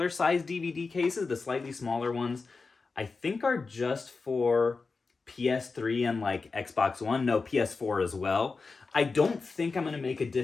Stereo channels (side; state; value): right; quieter; 4.3 dB